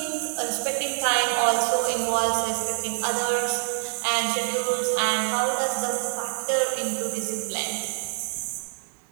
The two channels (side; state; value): left; silent; digital silence